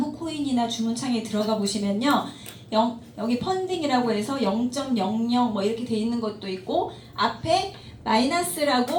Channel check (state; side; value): identical; both; correlation 1.00